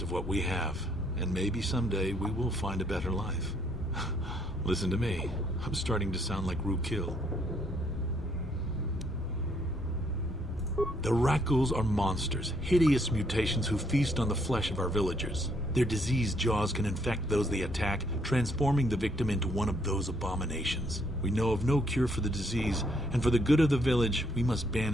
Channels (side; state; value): both; normal; correlation 0.70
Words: of what we have. And maybe someday we will find a better life. Listen to me. I'm starting to sound like Rukil. The rat ghouls are monsters, hideous mutations who feast on the flesh of our villagers. Their diseased jaws can infect those they attack, transforming the victim into one of those abominations. We know of no cure for the disease, and for the good of the village, we must